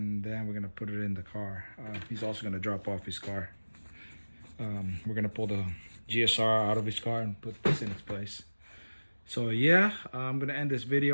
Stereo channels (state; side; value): inverted; both; correlation -1.00